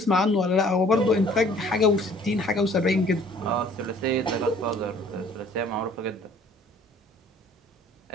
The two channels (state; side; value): normal; both; correlation 0.54